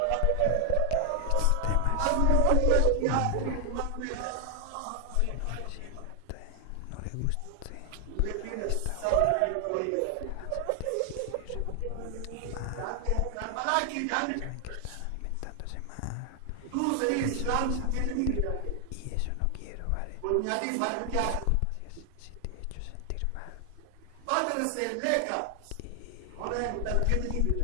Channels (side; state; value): both; different; correlation 0.00